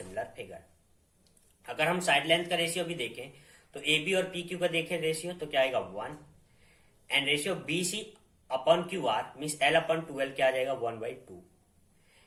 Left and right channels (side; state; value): both; identical; correlation 1.00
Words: फिगर। अगर हम साइड लेंथ का रेशियो भी देखें तो ए बी और पी क्यू का देखें रेशियो तो क्या आएगा, 1, and ratio B C upon Q R means L/2L क्या आ जाएगा, 1/2,